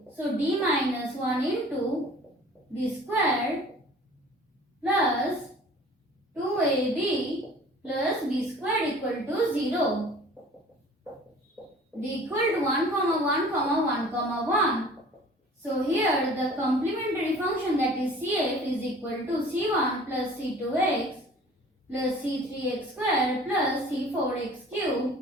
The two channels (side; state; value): both; normal; correlation 0.47